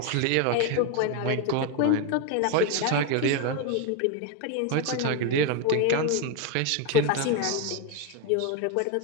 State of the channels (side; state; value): both; different; correlation 0.02